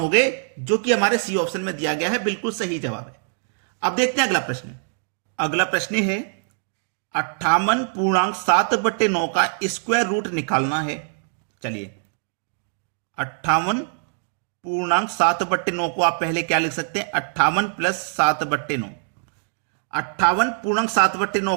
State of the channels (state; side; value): silent; left; digital silence